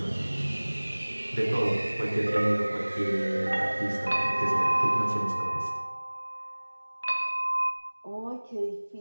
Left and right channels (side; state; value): both; inverted; correlation -1.00